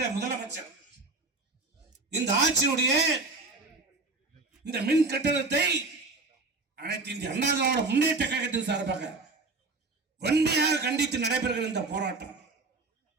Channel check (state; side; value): quieter; left; 3.6 dB